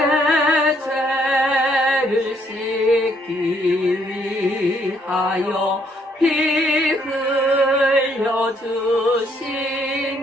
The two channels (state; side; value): normal; both; correlation 0.69